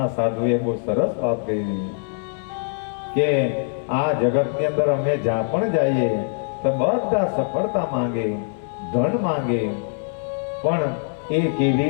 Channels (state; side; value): silent; right; digital silence